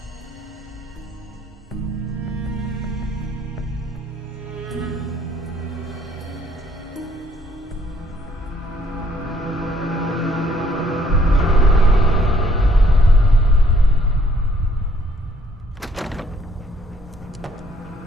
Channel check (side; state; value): both; normal; correlation 0.65